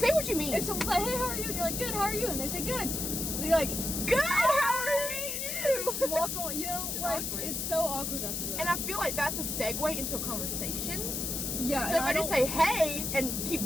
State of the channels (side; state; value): left; noise; hiss, 2 dB below the sound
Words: what you mean. If someone's like, hey, how are you? And you're like, good, how are you? And they say, good. And you're like, good, how are you? Just walk on, you know? It's like, awkward. It's so awkward after that. And I feel like that's a segue into a conversation. Yeah. So if I just say, hey, and